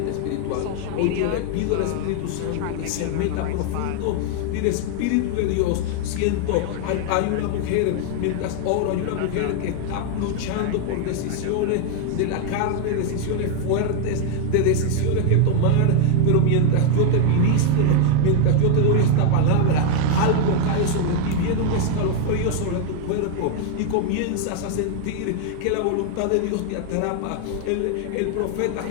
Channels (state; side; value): different; both; correlation 0.00